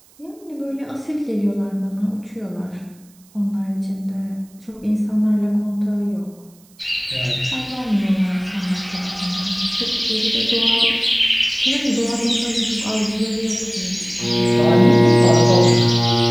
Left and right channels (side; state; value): right; noise; hiss, 29 dB below the sound